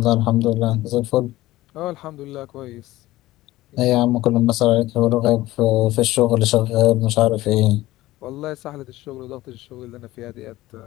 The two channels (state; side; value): quieter; right; 17.1 dB